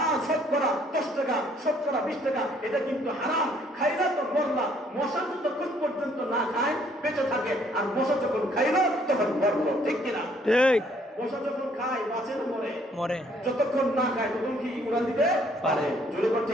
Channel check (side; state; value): both; normal; correlation 0.64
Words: শতকরা 10 টাকা, শতকরা 20 টাকা, এটা কিন্তু হারাম। খাইলা তো মরলা। মশা যতক্ষণ পর্যন্ত না খায় বেঁচে থাকে, আর মশা যখন খাইলো তখন মরলো। ঠিক কিনা? ঠিক। মশা যখন খায় বাঁচে না মরে? মরে। যতক্ষণ না খায় তখন কি উড়ান দিতে পারে? জোরে করে